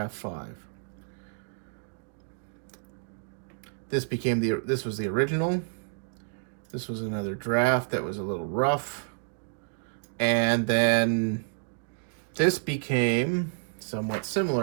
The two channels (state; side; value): silent; left; digital silence